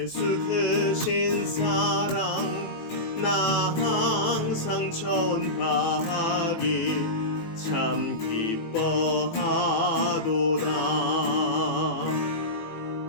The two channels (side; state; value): right; late; 18 ms